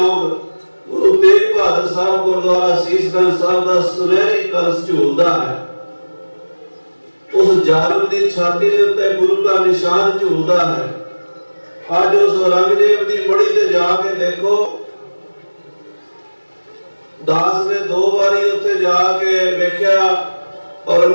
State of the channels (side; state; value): both; inverted; correlation -1.00